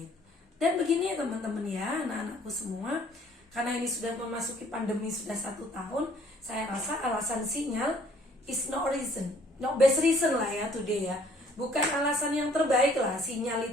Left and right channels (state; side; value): normal; both; correlation 0.60